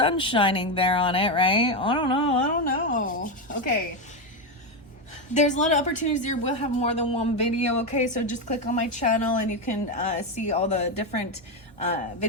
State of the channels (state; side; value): normal; both; correlation 0.09